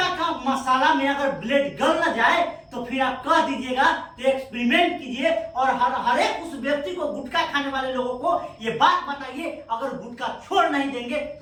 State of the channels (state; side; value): identical; both; correlation 1.00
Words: का मसाला में अगर ब्लेड गल न जाए तो फिर आप कह दीजिएगा, तो एक्सपेरिमेंट कीजिए और हर एक उस व्यक्ति को, गुटखा खाने वाले लोगों को ये बात बताइए। अगर गुटखा छोड़ नहीं देंगे